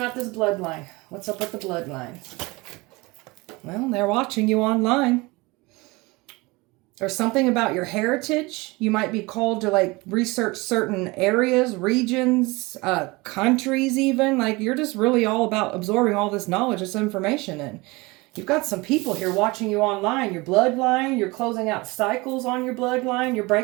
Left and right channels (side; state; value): left; quieter; 23.9 dB